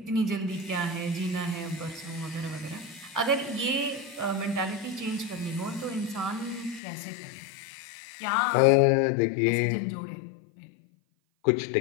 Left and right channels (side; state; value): right; drops out; at 6.8 s